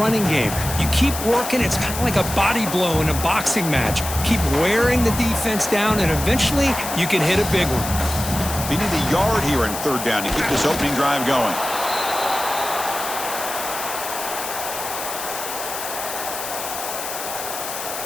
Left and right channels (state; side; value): noise; left; hiss, 7 dB below the sound